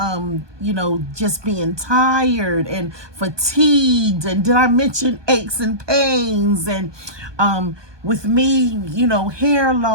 just being tired and fatigued. And did I mention aches and pains? And with me, hair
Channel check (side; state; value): left; late; 1.2 ms